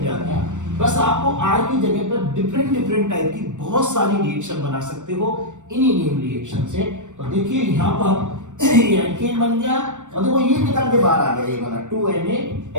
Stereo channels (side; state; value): left; late; 0.85 ms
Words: जाता। बस आपको R की जगह पर डिफरेंट टाइप की बहुत सारी रिएक्शन बना सकते हो इन्हीं नेम रिएक्शन से। तो देखिए यहां पर एल्केन बन गया और देखो ये निकल के बाहर आ गया, ये वाला